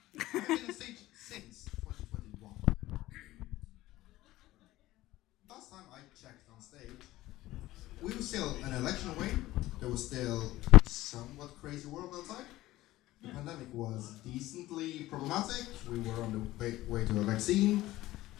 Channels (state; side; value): quieter; right; 16.6 dB